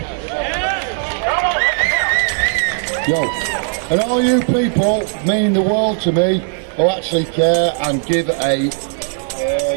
Yo, and all you people mean the world to me who actually care and give a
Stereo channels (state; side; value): silent; left; 60 dB below the other